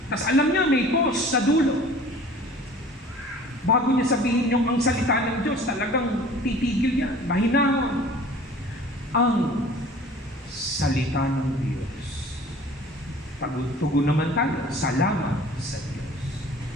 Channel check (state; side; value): normal; both; correlation 0.47